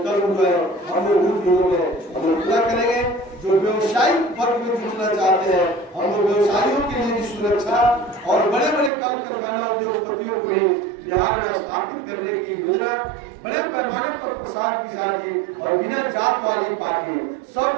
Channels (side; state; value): left; drops out; at 8.9 s